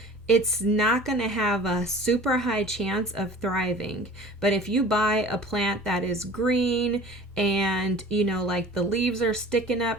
it's not going to have a super high chance of thriving. But if you buy a plant that is green and, like the leaves are sticking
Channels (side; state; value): both; normal; correlation 0.44